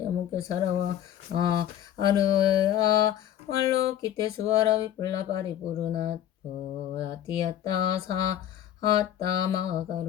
사라와 아르아 말로 기테 수아라 위플라 바리 부르나 보야티야타 사 하따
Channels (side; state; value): right; quieter; 11.1 dB